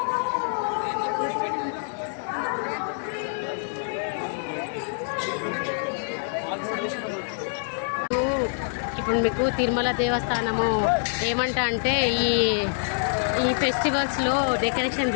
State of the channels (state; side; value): silent; right; digital silence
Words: ఇప్పుడు మీకు తిరుమల దేవస్థానము ఏమంటా అంటే ఈ ఫెస్టివల్స్లో డెకరేషన్